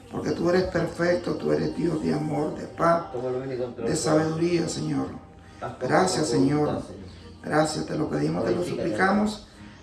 porque tú eres perfecto, tú eres Dios de amor, de paz, de sabiduría, Señor. Gracias, Señor. Gracias, te lo pedimos, te lo suplicamos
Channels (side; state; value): both; identical; correlation 1.00